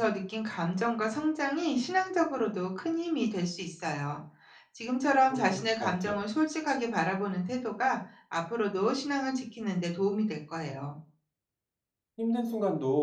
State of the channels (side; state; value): both; identical; correlation 1.00